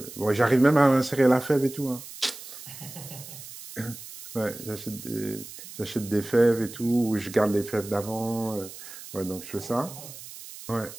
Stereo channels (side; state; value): right; noise; hiss, 14 dB below the sound